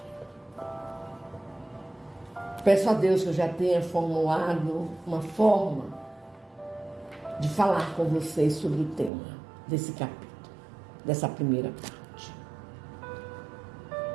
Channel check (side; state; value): left; drops out; at 9.1 s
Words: peço a Deus que eu já tenha formulado uma forma de falar com vocês sobre o tema desse capítulo, dessa primeira parte.